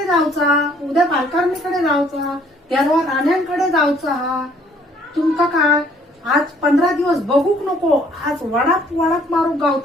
जाऊचा, उद्या पालकारणीकडे जाऊचा, तेरवा राण्यांकडे जाऊचा. हा तुमका काय आज 15 दिवस बघूक नको. आज वडाप वडाप मारू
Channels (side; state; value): both; normal; correlation 0.61